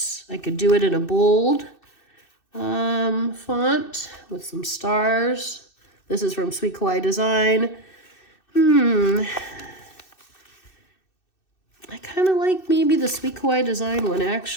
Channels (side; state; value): right; late; 2.6 ms